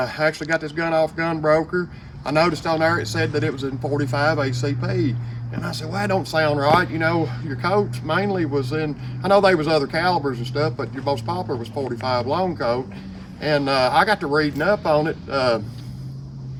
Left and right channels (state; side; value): identical; both; correlation 1.00